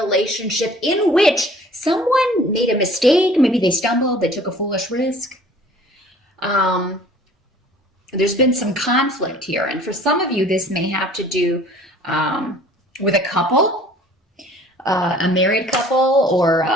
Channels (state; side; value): normal; both; correlation 0.51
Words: in which someone made a mistake. Maybe they stumbled, they took a foolish risk. Um, there's been some conflict here. And for some of you, this may have to do with a couple, a married couple, or,